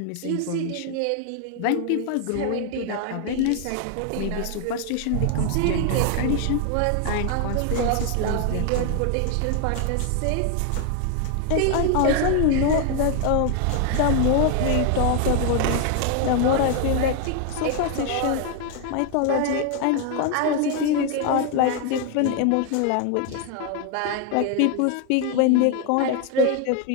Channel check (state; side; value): different; both; correlation 0.00